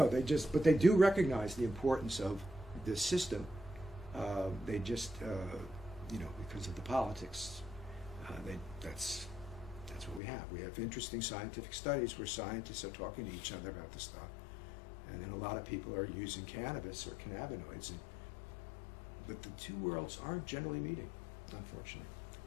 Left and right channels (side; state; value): right; drops out; at 10.2 s